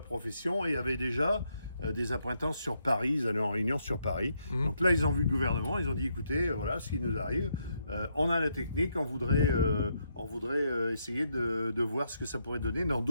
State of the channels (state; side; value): inverted; both; correlation -0.77